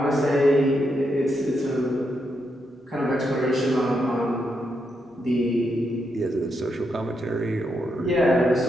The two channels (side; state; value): both; normal; correlation 0.81